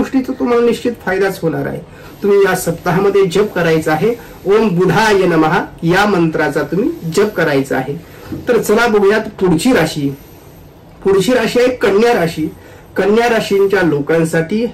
तुम्हाला निश्चित फायदाच होणार आहे। तुम्ही या सप्ताहामध्ये जप करायचा आहे ओम बुधाय नमः या मंत्राचा तुम्ही जप करायचा आहे। तर चला बघूयात पुढची राशी। पुढची राशी आहे कन्या राशी। कन्या राशींच्या लोकांसाठी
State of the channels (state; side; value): identical; both; correlation 1.00